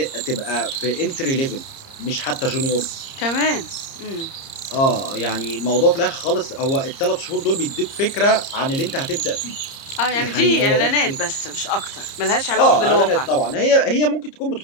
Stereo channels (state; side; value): late; right; 30 ms